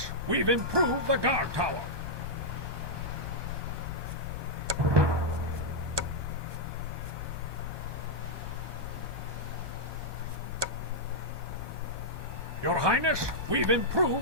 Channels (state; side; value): late; left; 1.2 ms